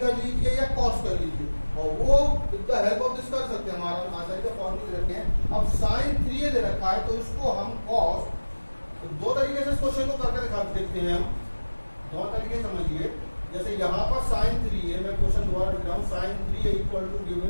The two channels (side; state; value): both; inverted; correlation -1.00